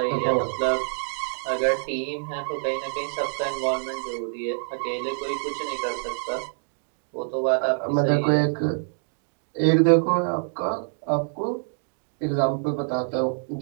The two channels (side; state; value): left; silent; digital silence